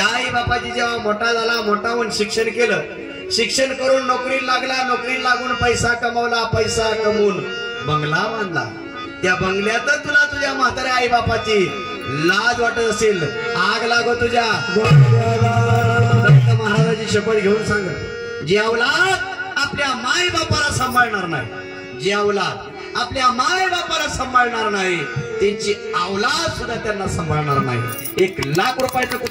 आई बापाची जेव्हा मोठा झाला, मोठा होऊन शिक्षण केलं, शिक्षण करून नोकरी लागला, नोकरी लागून पैसा कमवला, पैसा कमवून बंगला बांधला. त्या बंगल्यात तुला तुझ्या म्हाताऱ्या आई बापाची लाज वाटत असेल, आग लागो तुझ्या. दत्त महाराजाची शपथ घेऊन सांग, जी अवलाद आपल्या माय बापाला सांभाळणार नाही, जी अवलाद आपल्या माय बापाला सांभाळणार नाही, त्यांची अवलाद सुद्धा त्यांना सांभाळणार नाही. 1 लाख रुपयाचं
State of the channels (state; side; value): identical; both; correlation 1.00